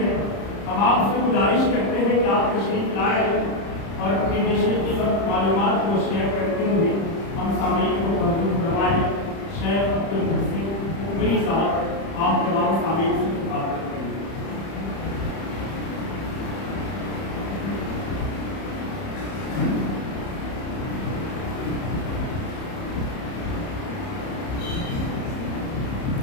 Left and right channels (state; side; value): late; right; 30 ms